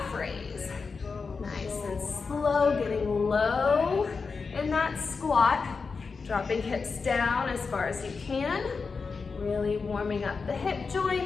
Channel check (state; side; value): quieter; right; 4.8 dB